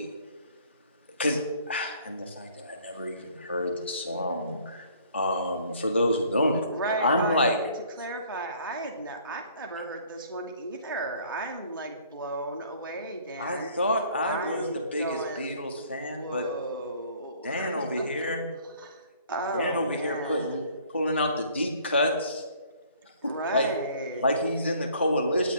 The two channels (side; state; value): both; inverted; correlation -0.57